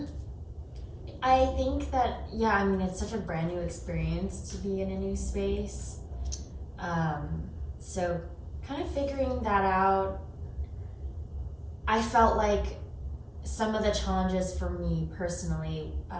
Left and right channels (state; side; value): identical; both; correlation 1.00